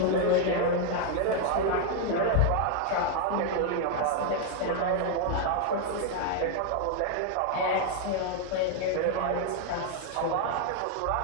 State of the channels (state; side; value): different; both; correlation 0.00